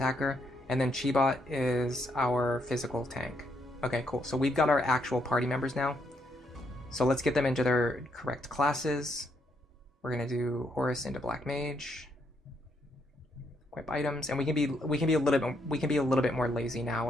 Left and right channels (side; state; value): both; normal; correlation 0.75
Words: And then Chibot is our physical tank. Okay, cool. So we've got our actual party members now. So let's get them into their correct classes. We're gonna do Horus into Black Mage. Equip items, and we can be a little bit more lazy now